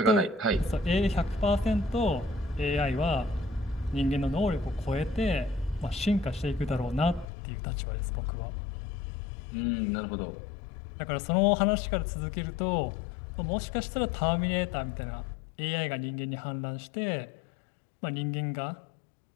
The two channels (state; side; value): drops out; right; at 7.2 s